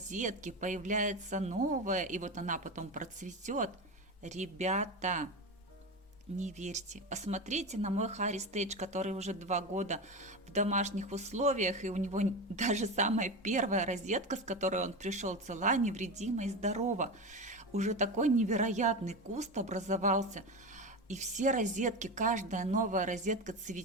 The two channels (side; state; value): both; normal; correlation 0.21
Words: появляется новая, и вот она потом процветет. Ребята, не верьте. Посмотрите на мой Harry Stage, который уже 2 года в домашних условиях, и у него даже самая первая розетка, с которой он пришел, цела, невредима и здорова. Уже такой невероятный куст образовался. И все розетки, каждая новая розетка